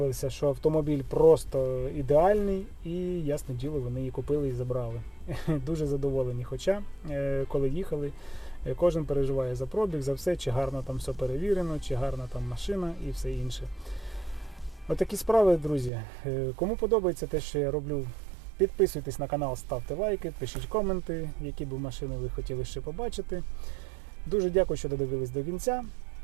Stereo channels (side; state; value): left; drops out; at 15.9 s